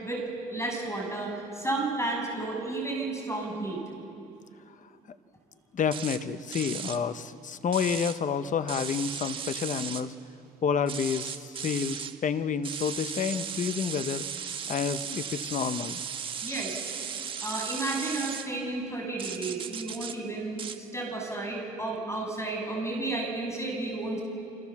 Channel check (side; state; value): both; normal; correlation 0.39